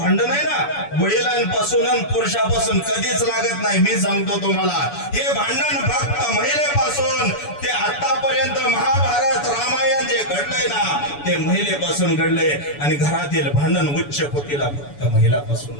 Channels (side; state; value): right; late; 7.0 ms